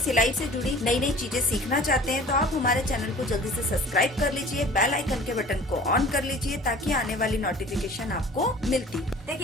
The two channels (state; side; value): normal; both; correlation 0.45